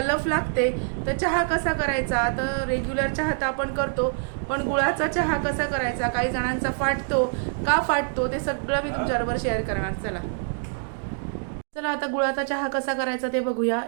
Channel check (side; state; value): left; silent; digital silence